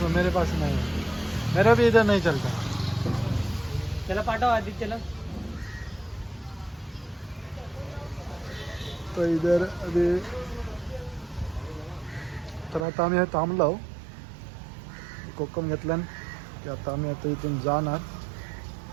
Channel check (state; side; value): drops out; left; at 12.9 s